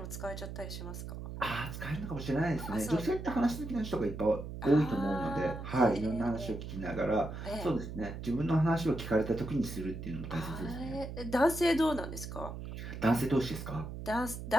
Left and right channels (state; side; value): noise; right; hum, 8 dB below the sound